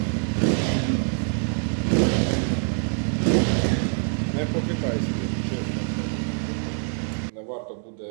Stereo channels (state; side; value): silent; left; 57 dB below the other